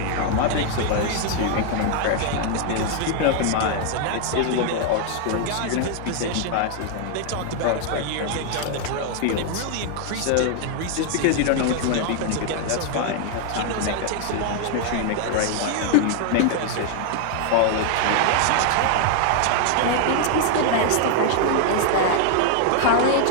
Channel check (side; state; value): both; different; correlation 0.00